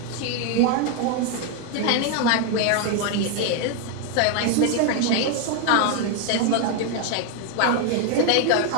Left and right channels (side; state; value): both; different; correlation 0.01